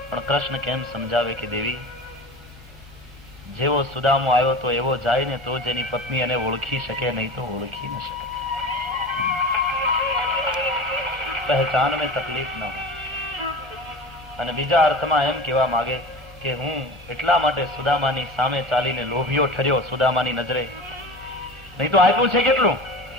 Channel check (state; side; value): normal; both; correlation 0.33